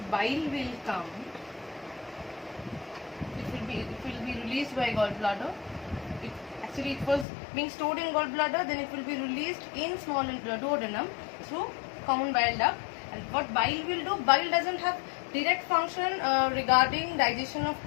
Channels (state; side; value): drops out; right; at 7.2 s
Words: bile will come. It will be released by gallbladder. It was being stored in gallbladder. Then it will be released in small duodenum through common bile duct. And what bile will do? Bile doesn't have direct function regarding digestion of